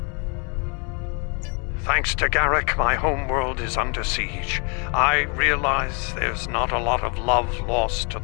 Thanks to Garrick, my homeworld is under siege. I realize there's not a lot of love lost to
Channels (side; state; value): right; quieter; 35.4 dB